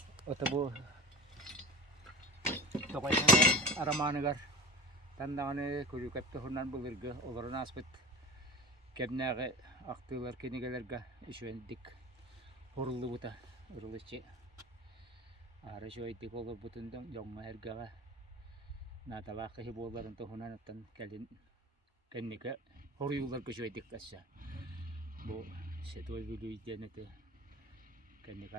Ota bu Tokaysan aramanıgar. Tandağını kuru kapta hundan bulurga. Oların aspet. Kebnağı aktılar kenigelerga işvendik. Horullu buta. Uruluşçı. Ara şöyle olur butundan yonga ergağa. Natalaka hiboların tohunan atan kelin kennike horuyular köşeydik kassa. Bu setoy bilu idenete kennik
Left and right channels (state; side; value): normal; both; correlation 0.33